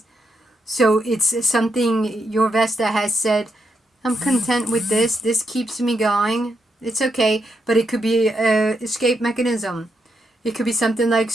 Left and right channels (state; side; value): normal; both; correlation 0.81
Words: So it's something your Vesta has said, I'm content with this. This keeps me going. It's okay. But it could be an escape mechanism. It could be something like